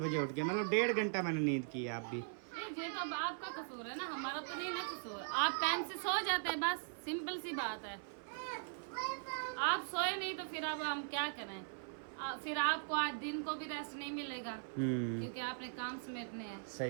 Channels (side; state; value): left; silent; 51 dB below the other